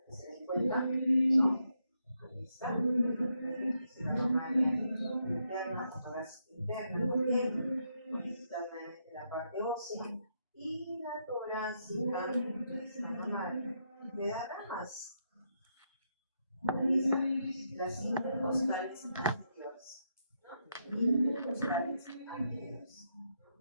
que se den cuenta, ¿no? Ahí está. Es la mamaria interna o torácica interna. Muy bien. Internamente la parte ósea. Y la torácica es la mamaria. Me da ramas. Ahí están las intercostales anteriores. Intercostales anteriores.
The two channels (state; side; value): inverted; both; correlation -0.80